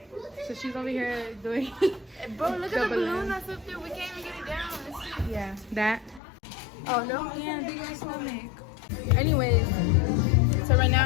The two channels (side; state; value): right; drops out; at 6.2 s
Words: So she's over here doing. Bro, look at the balloon that's up there. We can't even get it down. Yeah, that. Oh no, yeah, big ass stomach. Anyways, so right